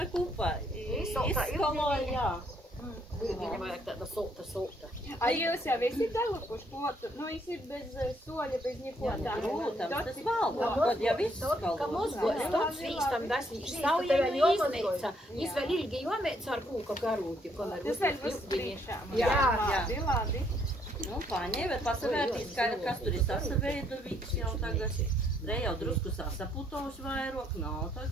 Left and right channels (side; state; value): both; normal; correlation 0.69